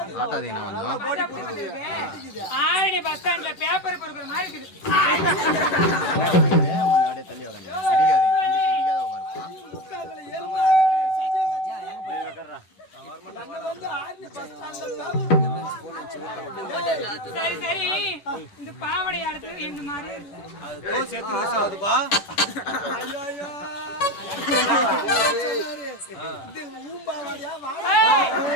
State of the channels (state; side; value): late; right; 11 ms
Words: காட்டாதீங்க கொஞ்சம். ஆரணி பஸ் ஸ்டாண்ட்ல பேப்பர் பொறுக்கிற மாதிரி இருக்குது. தள்ளி இடிக்காத உட்காருப்பா. சரி சரி, இந்த பாவடை அடுத்து இந்த மாதிரி